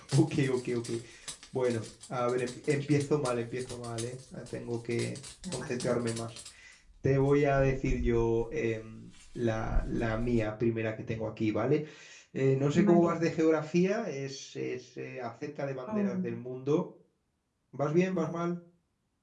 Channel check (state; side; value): identical; both; correlation 1.00